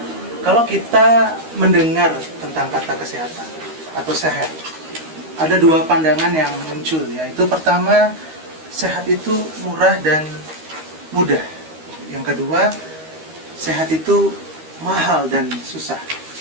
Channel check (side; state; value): left; late; 13 ms